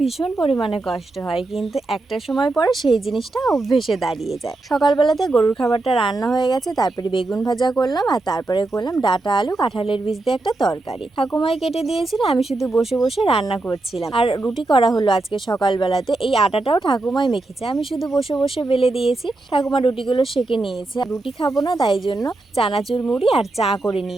ভীষণ পরিমাণে কষ্ট হয়, কিন্তু একটা সময় পরে সেই জিনিসটা অভ্যেসে দাঁড়িয়ে যায়। সকালবেলাতে গরুর খাবারটা রান্না হয়ে গেছে, তারপরে বেগুন ভাজা করলাম আর তারপরে করলাম ডাঁটা আলু কাঁঠালের বীজ দিয়ে একটা তরকারি। ঠাকুমাই কেটে দিয়েছিল, আমি শুধু বসে বসে রান্না করছিলাম। আর রুটি করা হলো আজকে সকালবেলাতে, এই আটাটাও ঠাকুমাই মেখেছে, আমি শুধু বসে বসে বেলে দিয়েছি। ঠাকুমা রুটিগুলো সেঁকে নিয়েছে। রুটি খাবো না তাই জন্য চানাচুর মুড়ি আর চা করে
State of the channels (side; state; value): left; quieter; 3.0 dB